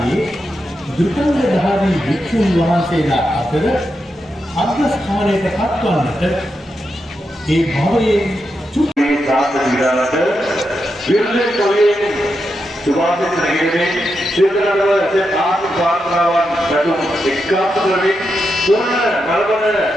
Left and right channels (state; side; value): normal; both; correlation 0.86